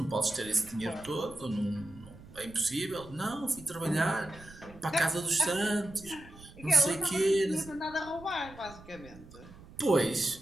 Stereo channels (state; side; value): noise; right; rumble, 19 dB below the sound